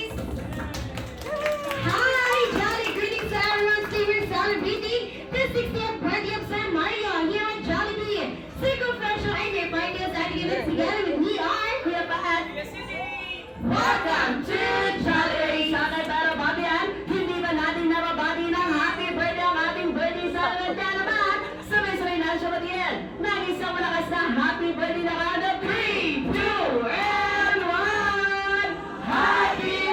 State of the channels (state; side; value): identical; both; correlation 1.00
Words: Hi, Jolly! Greetings to everyone still celebrating the 60th birthday of San Mario here at Jollibee. Single Fresh ay may party sa ating event together with me are Kuya Paat. Welcome to Jolly! Sana tayo babihan, hindi ba natin nababati ng happy birthday ang ating birthday celebrant naman? Sabay-sabay na siya batiin. Nag-isang malakas na happy birthday na kada 3, 2, and 1! Happy